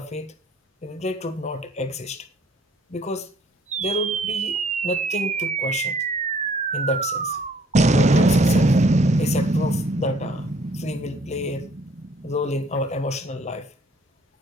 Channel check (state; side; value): normal; both; correlation 0.59